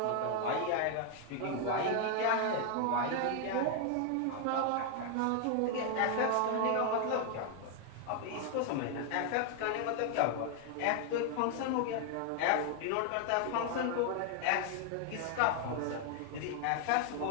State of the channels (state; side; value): different; both; correlation 0.00